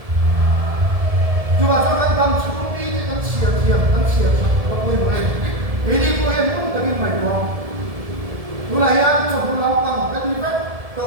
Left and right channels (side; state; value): left; late; 1.7 ms